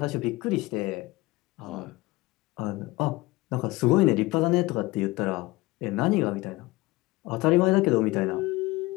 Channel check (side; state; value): right; quieter; 20.9 dB